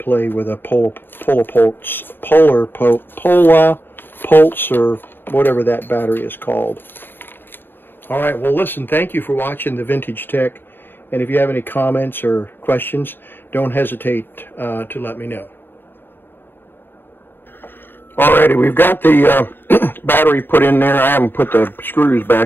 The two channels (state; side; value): late; right; 0.096 ms